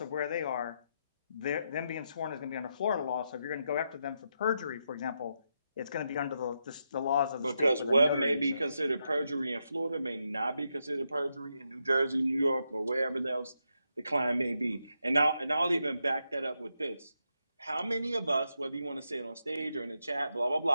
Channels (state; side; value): inverted; both; correlation -0.83